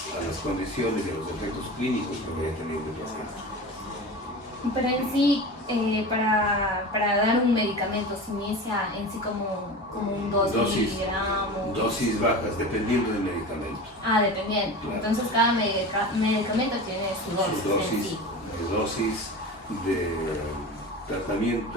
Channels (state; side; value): normal; both; correlation 0.31